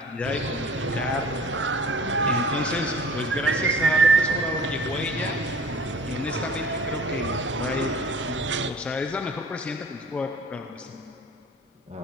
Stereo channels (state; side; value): normal; both; correlation 0.46